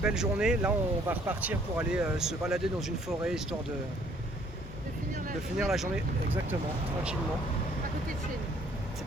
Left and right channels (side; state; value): both; normal; correlation 0.61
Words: journée. Là, on va repartir pour aller se balader dans une forêt histoire de finir la journée. Exactement, tranquillement. À côté de chez nous. C'est